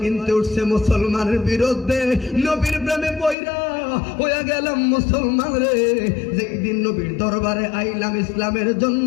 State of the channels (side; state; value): right; drops out; at 3.4 s